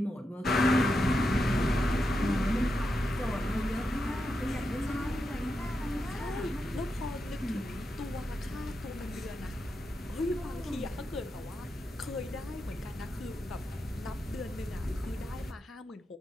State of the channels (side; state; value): both; normal; correlation 0.86